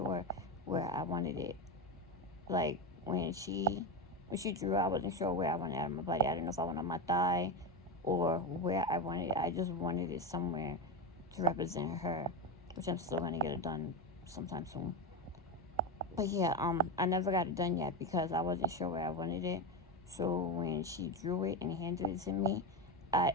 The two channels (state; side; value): normal; both; correlation 0.15